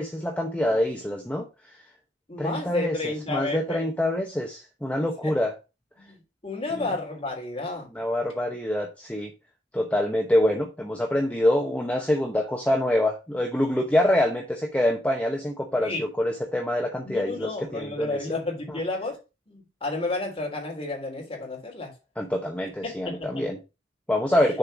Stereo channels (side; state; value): both; normal; correlation 0.78